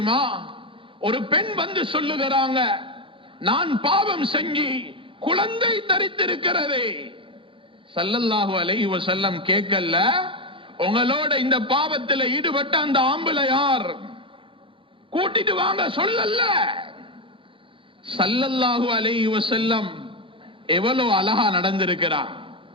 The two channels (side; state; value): left; late; 0.25 ms